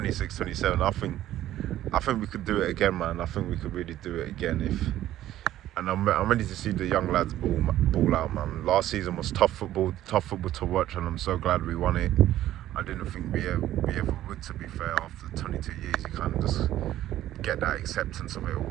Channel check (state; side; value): quieter; left; 13.3 dB